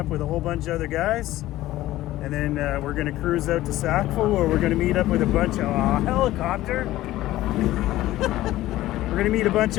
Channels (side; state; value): right; quieter; 15.6 dB